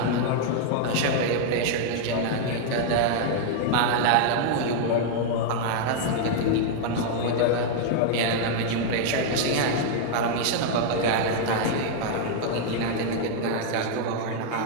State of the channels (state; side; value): different; both; correlation -0.01